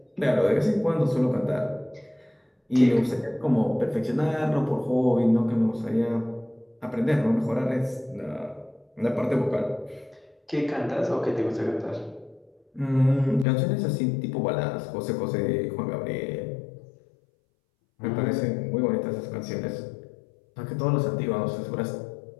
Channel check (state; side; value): drops out; right; at 13.5 s